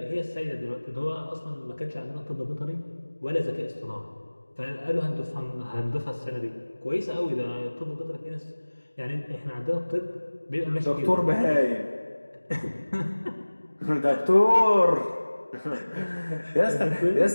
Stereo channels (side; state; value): both; inverted; correlation -1.00